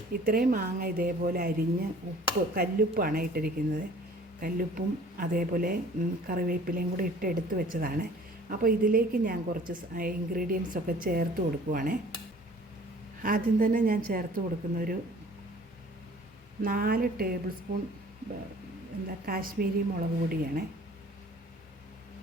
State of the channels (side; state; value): both; normal; correlation 0.50